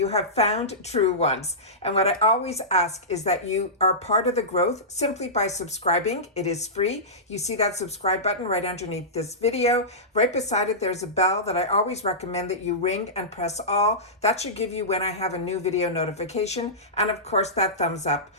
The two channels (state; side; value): normal; both; correlation -0.17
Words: have found Truewants. And what I always ask is that you are part of the growth simply by subscribing. It is free. You see that subscribe button right underneath this video. Right beside it, there's a bell that I always recommend that you ring and press all. That should give you when I have a new video notification. And of course, that thumbs up,